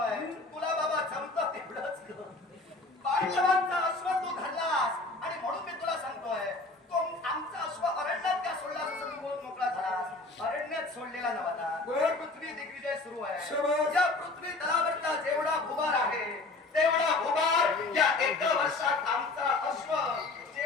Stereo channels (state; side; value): quieter; right; 3.3 dB